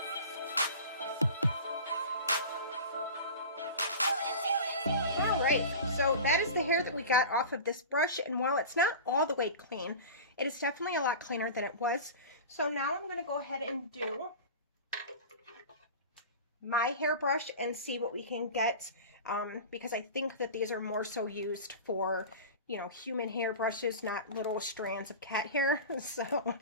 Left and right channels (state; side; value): inverted; both; correlation -0.33